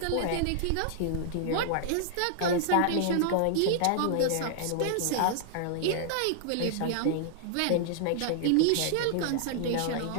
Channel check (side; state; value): both; different; correlation -0.01